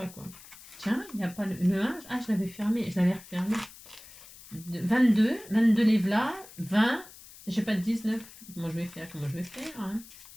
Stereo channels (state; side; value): noise; left; hiss, 19 dB below the sound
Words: quoi. Tiens, il n'y a pas le 1. Ah, je l'avais fermé. Je l'avais refermé. 22 les v'là. 20. J'ai pas de 19. Comment je vais faire hein.